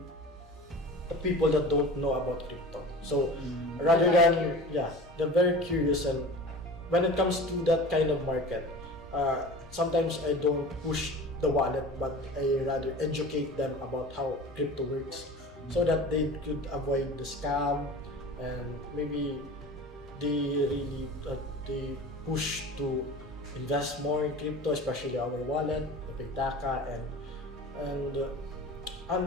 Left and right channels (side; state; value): both; normal; correlation 0.37